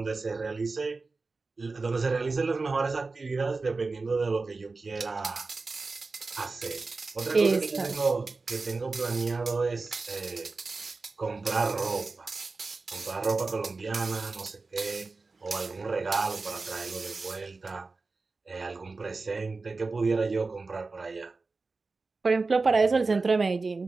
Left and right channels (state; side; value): quieter; left; 3.9 dB